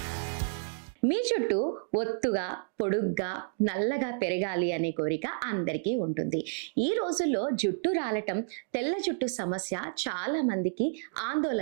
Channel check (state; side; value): silent; left; digital silence